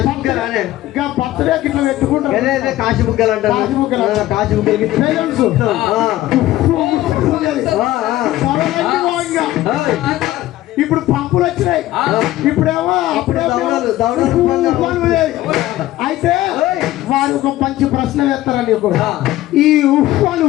ఇంకా బర్త్డే ఇట్లా పెట్టుకుంటావు కాశీ బుగ్గలు అంటారు. కాశీ బుగ్గలు బెలూన్స్ ఇప్పుడు పంపులు వచ్చినాయి, ఇప్పుడేమో అయితే వారు ఒక మంచి ప్రశ్న వేస్తారని ఈ ఉఫ్ఫను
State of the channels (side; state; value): right; quieter; 15.4 dB